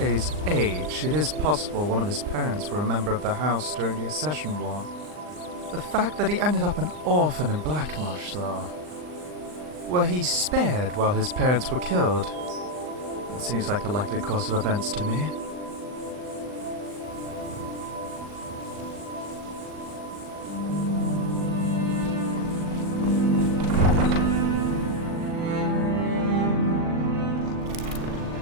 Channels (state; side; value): late; left; 39 ms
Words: age, it is possible one of his parents were a member of the house during the Accession War. The fact that he ended up an orphan in Blackmarsh, though. Were he spared while his parents were killed? That seems like a likely course of events to me.